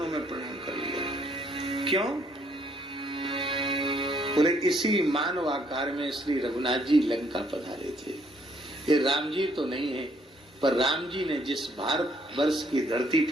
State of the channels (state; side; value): normal; both; correlation 0.67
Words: में प्रणाम कर लिया। क्यों? बोले इसी मानव आकार में श्री रघुनाथ जी लंका पधारे थे। ये राम जी तो नहीं है, पर राम जी ने जिस भारत वर्ष की धरती